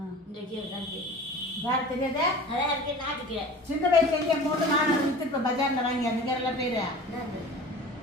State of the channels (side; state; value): both; normal; correlation 0.39